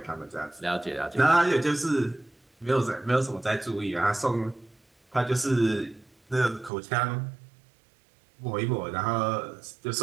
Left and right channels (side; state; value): left; drops out; at 6.7 s